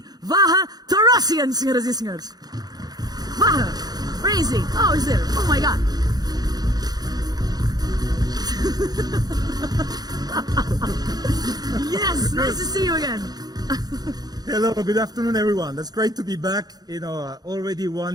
Vahe Torrosian, senhoras e senhores. Vahe, where is he? Oh, he's there. Oh my God. Yes, nice to see you again. Hello, good afternoon, everyone. That's great to be back. Already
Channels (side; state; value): left; late; 0.19 ms